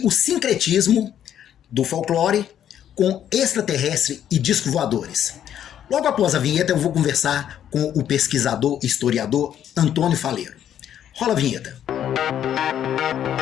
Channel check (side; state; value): right; quieter; 10.2 dB